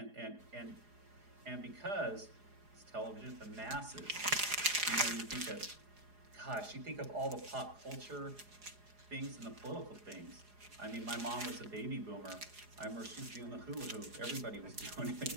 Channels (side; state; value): left; late; 4.8 ms